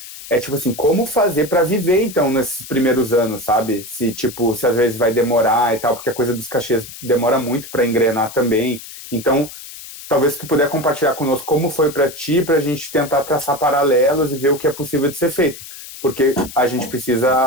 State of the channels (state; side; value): noise; left; hiss, 14 dB below the sound